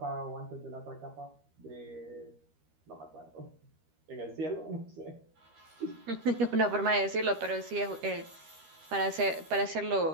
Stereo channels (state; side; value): late; left; 13 ms